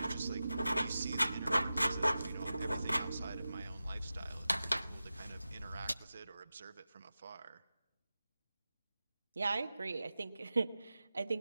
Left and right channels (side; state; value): both; inverted; correlation -0.94